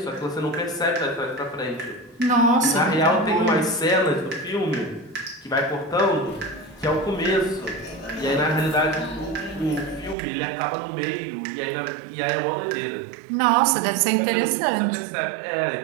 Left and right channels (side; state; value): left; drops out; at 10.2 s